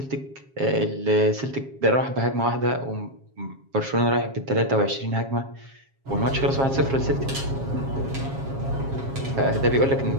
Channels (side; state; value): left; late; 7.4 ms